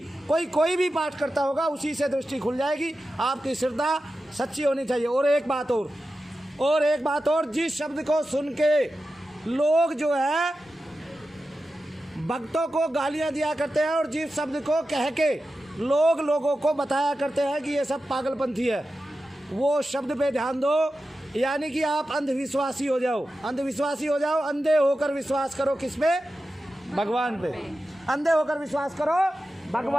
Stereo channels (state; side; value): normal; both; correlation 0.92